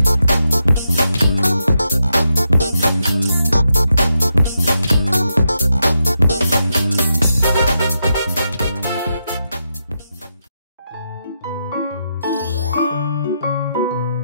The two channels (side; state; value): both; inverted; correlation -0.84